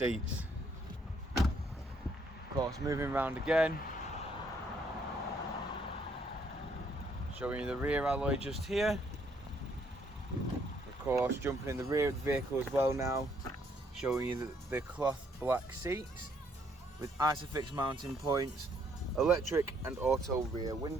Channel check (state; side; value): normal; both; correlation 0.69